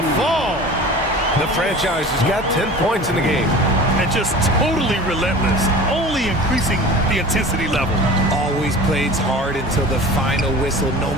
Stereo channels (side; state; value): both; normal; correlation 0.39